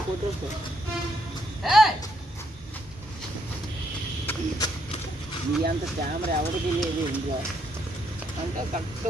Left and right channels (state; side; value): normal; both; correlation 0.74